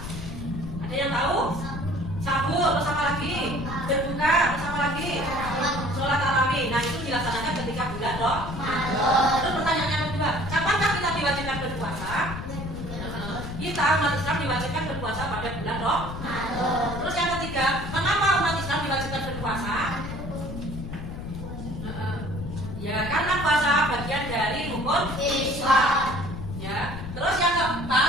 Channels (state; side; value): noise; left; rumble, 8 dB below the sound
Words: Ada yang tahu? Sahur, terus apa lagi? Berbuka, terus apa lagi? Sholat tarawih. Nah, itu dilaksanakan ketika bulan Ramadan. Terus pertanyaan yang kedua, kapankah kita diwajibkan berpuasa? Kita umat Islam diwajibkan berpuasa pada bulan Ramadan. Terus yang ketiga, mengapa umat Islam diwajibkan berpuasa? Ya, karena puasa bagian dari rukun Islam. Ya. Terus yang